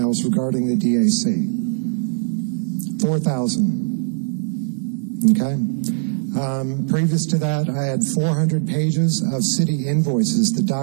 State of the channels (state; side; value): silent; left; 64 dB below the other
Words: regarding the DAC. 4,000. Okay? Previous to that, I had 400 pages of city invoices that